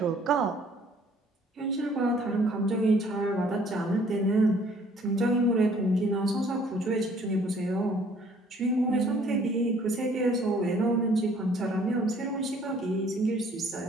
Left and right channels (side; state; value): both; normal; correlation 0.59